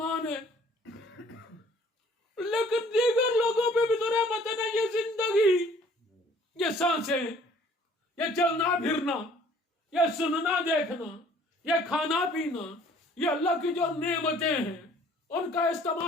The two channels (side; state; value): both; normal; correlation 0.56